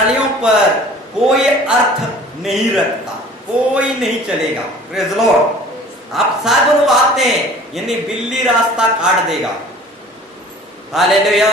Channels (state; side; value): normal; both; correlation 0.47